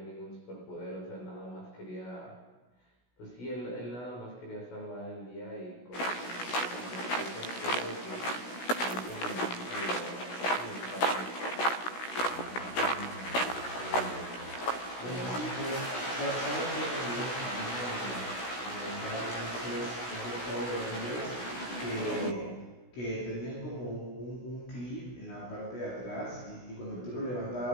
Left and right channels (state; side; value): late; right; 16 ms